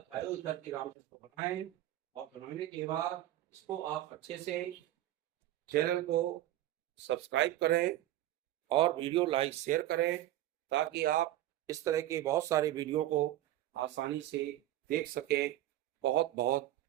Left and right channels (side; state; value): left; quieter; 14.3 dB